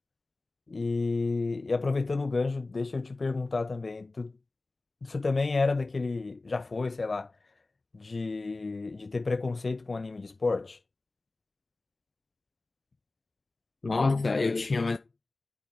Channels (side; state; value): right; quieter; 3.3 dB